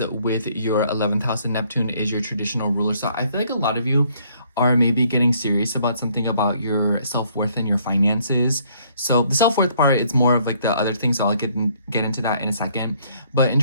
with your 11th house, and Neptune is your traditional ruler. So I feel like a lot of you are maybe getting serious about something about your self-worth and your finances. So the self-worth part, it's more of like the other things, so I'll get into that in a second. But in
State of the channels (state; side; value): inverted; both; correlation -0.65